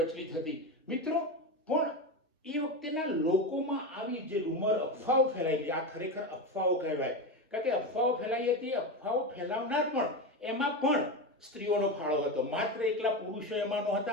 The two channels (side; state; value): both; normal; correlation 0.18